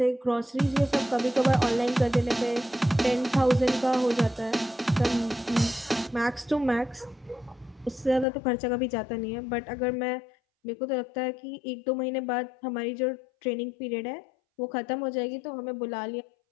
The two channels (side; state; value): right; drops out; at 8.2 s